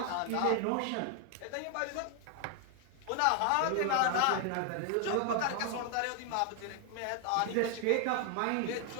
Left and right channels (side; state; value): both; different; correlation 0.00